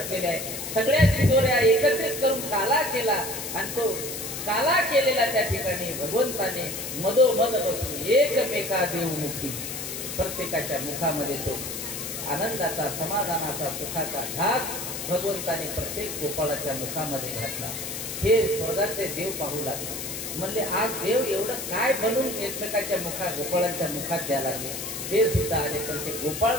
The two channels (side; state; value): left; noise; hiss, 6 dB below the sound